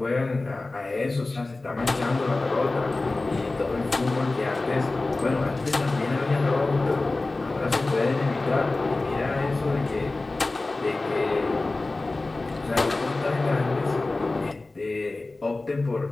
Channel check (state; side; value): quieter; right; 3.2 dB